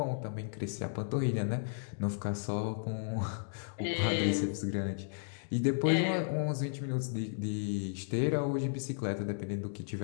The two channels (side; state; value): right; silent; digital silence